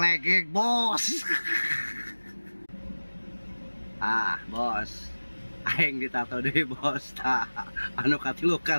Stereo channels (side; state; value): both; inverted; correlation -1.00